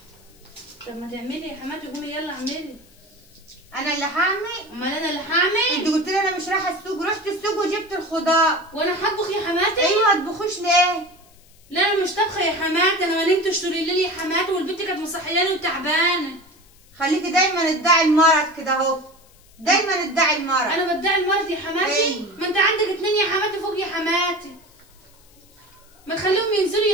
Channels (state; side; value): noise; left; hiss, 29 dB below the sound